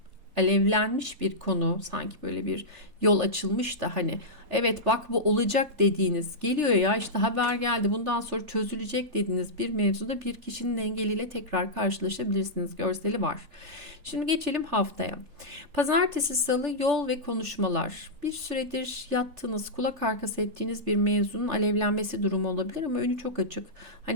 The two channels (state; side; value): late; left; 3.4 ms